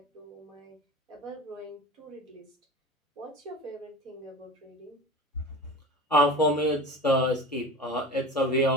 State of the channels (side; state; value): both; normal; correlation 0.33